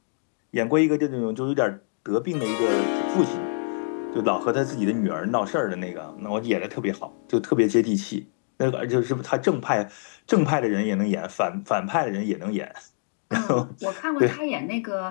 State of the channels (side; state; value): right; silent; digital silence